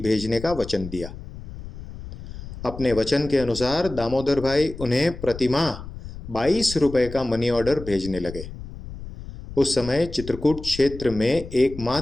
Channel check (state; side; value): noise; left; rumble, 12 dB below the sound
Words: का वचन दिया। अपने वचन के अनुसार दामोदर भाई उन्हें प्रतिमाह 22 रुपए का मनी ऑर्डर भेजने लगे। उस समय चित्रकूट क्षेत्र में